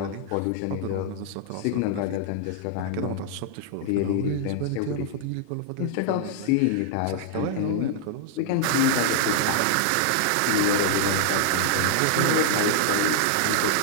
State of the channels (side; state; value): both; different; correlation -0.01